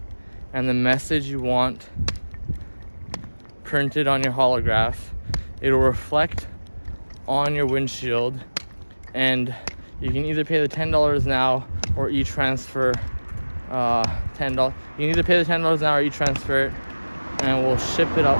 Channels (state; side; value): inverted; both; correlation -1.00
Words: and the message you want printed on your holograph. It'll reflect on your windshield, and you can either pay the $10 now or e-transfer $10. You can either pay the $10 now or e-transfer it, and we'll ship it